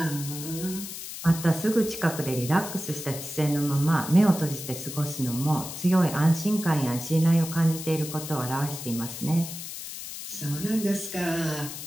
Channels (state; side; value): noise; left; hiss, 9 dB below the sound